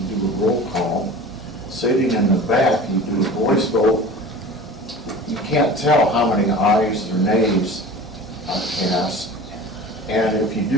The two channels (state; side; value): normal; both; correlation 0.38